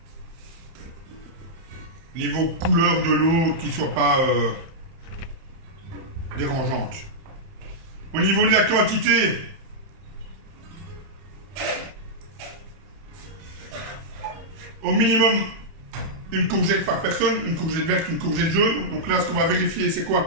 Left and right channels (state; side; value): late; left; 30 ms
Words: niveau couleur de l'eau qui ne soit pas dérangeante. Au niveau de la quantité, au minimum une courgette par personne, une courgette verte, une courgette jaune. Donc là, ce qu'on va vérifier, c'est